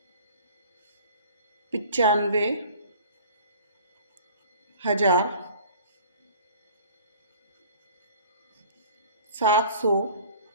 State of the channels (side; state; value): both; inverted; correlation -0.47